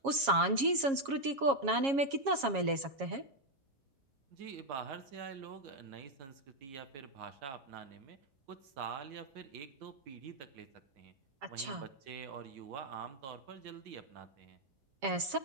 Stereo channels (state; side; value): late; left; 7.3 ms